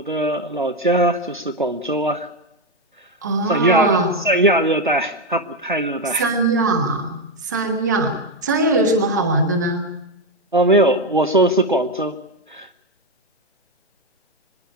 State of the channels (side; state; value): both; normal; correlation 0.08